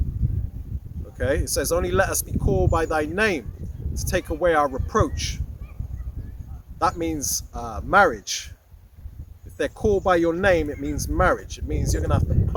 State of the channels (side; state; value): both; identical; correlation 1.00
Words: Okay, it says, only let us be called by thy name to take away our reproach. That means marriage. If they're called by your name, it means marriage. It means you're gonna have to